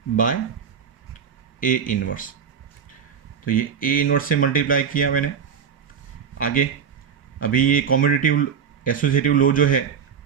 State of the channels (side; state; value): left; quieter; 7.2 dB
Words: bye A inverse, तो ये A इन्वर्स से मल्टीप्लाई किया मैंने। आगे अभी ये कॉम्यूटेटिव एसोसिएटिव लॉ जो है